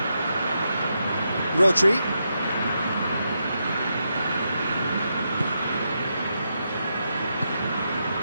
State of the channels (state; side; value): inverted; both; correlation -0.84